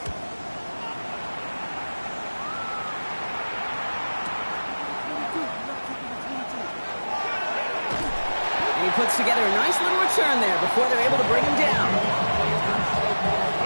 And he puts together a nice little return there before they're able to bring him down.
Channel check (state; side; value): inverted; both; correlation -1.00